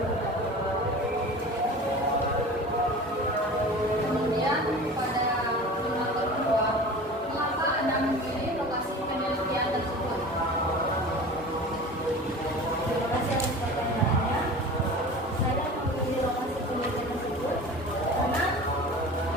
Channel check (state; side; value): normal; both; correlation 0.37